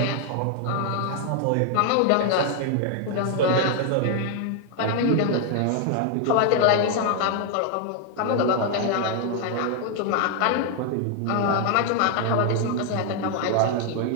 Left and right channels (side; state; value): both; different; correlation 0.00